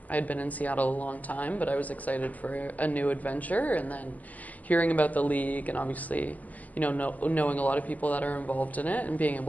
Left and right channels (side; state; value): right; late; 0.077 ms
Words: had been in Seattle a long time, but I was excited for a new adventure, and then hearing about the league and obviously, knowing a lot of people that are involved in it and being